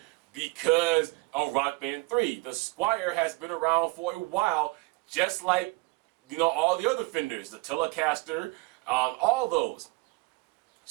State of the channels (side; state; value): left; quieter; 25.5 dB